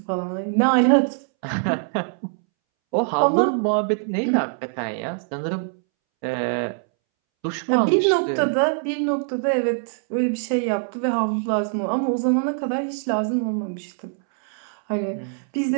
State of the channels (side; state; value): left; silent; 63 dB below the other